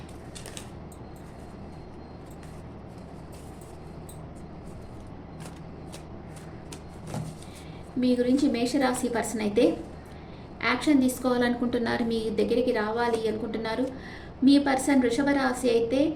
మీ గురించి మేషరాశి పర్సన్ అయితే యాక్షన్ తీసుకోవాలనుకుంటున్నారు, మీ దగ్గరికి రావాలి అనుకుంటున్నారు. మీ పర్సన్ వృషభ రాశి అయితే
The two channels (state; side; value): identical; both; correlation 1.00